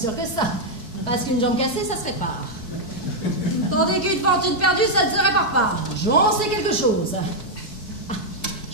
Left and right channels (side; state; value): right; late; 4.6 ms